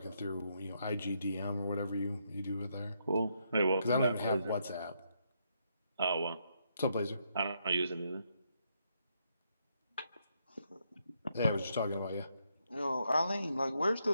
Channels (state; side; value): inverted; both; correlation -0.77